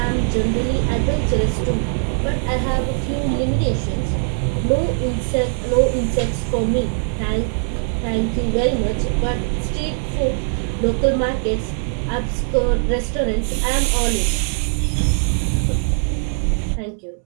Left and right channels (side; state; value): left; silent; 63 dB below the other